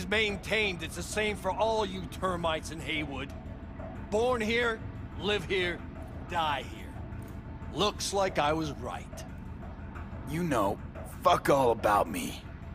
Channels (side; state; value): both; identical; correlation 1.00